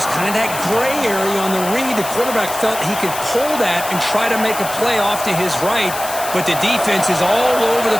kind of that gray area on the read. The quarterback felt he could pull that and try to make a play off to his right, but the defense is all over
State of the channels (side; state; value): left; noise; hiss, 9 dB below the sound